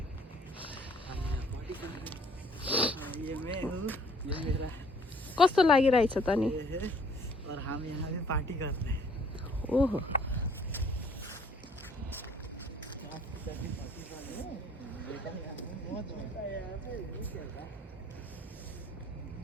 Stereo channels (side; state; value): both; normal; correlation 0.58